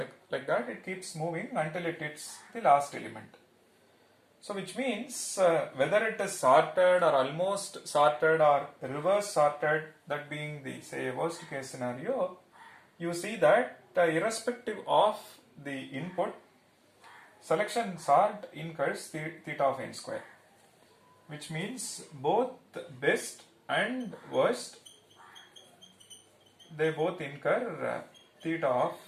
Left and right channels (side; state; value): both; identical; correlation 1.00